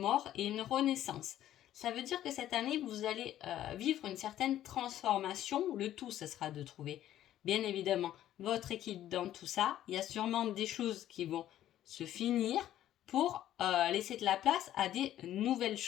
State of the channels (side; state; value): right; quieter; 12.4 dB